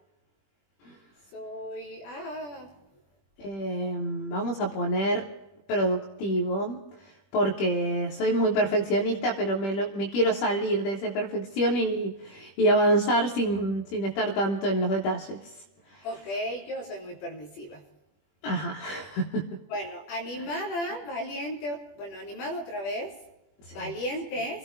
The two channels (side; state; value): right; late; 20 ms